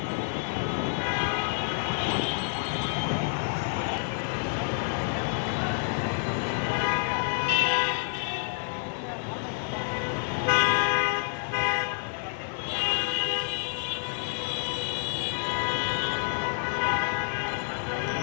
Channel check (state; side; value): silent; right; digital silence